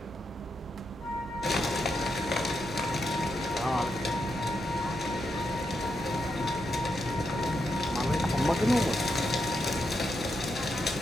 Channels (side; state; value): both; normal; correlation 0.83